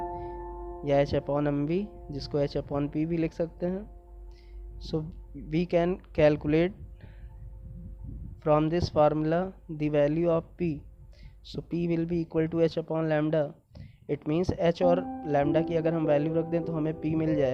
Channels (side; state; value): both; identical; correlation 1.00